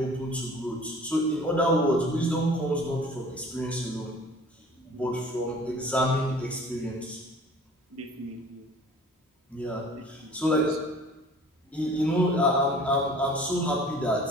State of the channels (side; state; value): both; normal; correlation 0.48